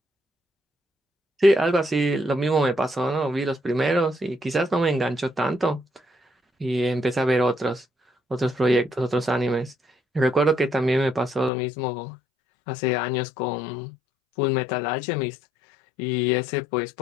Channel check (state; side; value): drops out; right; at 11.5 s